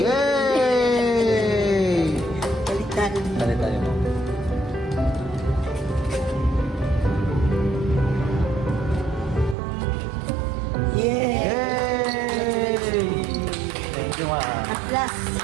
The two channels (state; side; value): drops out; left; at 9.6 s